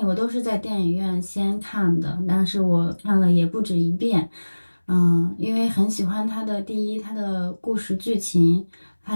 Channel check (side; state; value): both; inverted; correlation -1.00